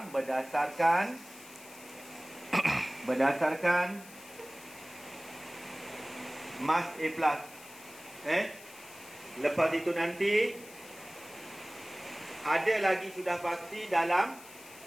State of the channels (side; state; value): left; noise; hiss, 19 dB below the sound